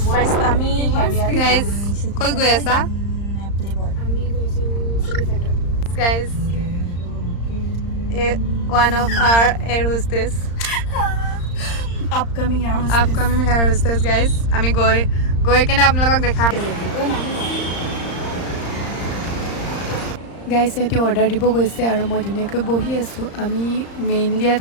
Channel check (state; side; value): late; right; 35 ms